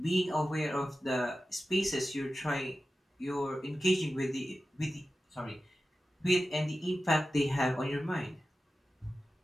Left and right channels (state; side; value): normal; both; correlation 0.93